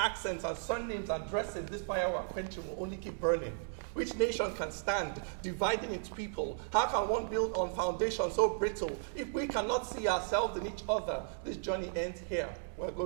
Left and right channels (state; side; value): silent; left; digital silence